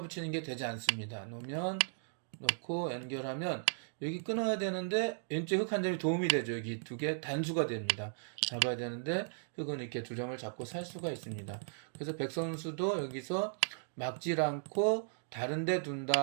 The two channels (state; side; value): silent; left; digital silence